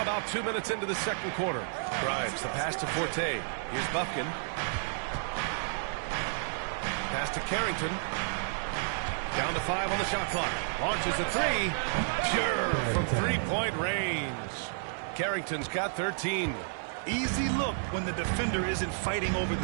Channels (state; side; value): silent; left; 57 dB below the other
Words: about 2 minutes into the second quarter. Grimes, the pass to Forte. Here's Bufkin. Pass to Carrington. Down to 5 on the shot clock. Launches a three. Pure from three-point range. Carrington's got 13. Easy look when the defender isn't fighting over